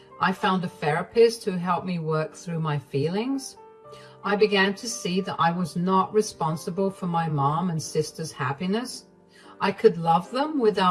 I found a therapist who helped me work through my feelings. I began to see that I was not responsible for my mom and sister's happiness. I could love them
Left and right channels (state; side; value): identical; both; correlation 1.00